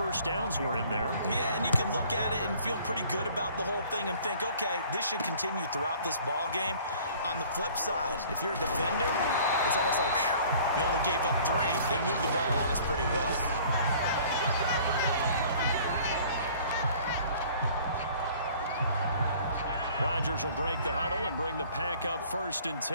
downs were in there. Yeah, and you can look at it and feel pretty good about the whole thing and think, okay, this should continue throughout this ball game. On the flip side, if you're a defender, it's almost like, whew, we only gave up 3. They moved the ball on us pretty well. Rodgers will break the huddle and bring the pack up 1st and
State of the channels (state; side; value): inverted; both; correlation -0.52